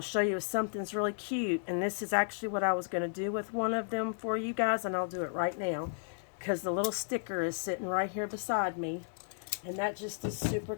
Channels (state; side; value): silent; right; digital silence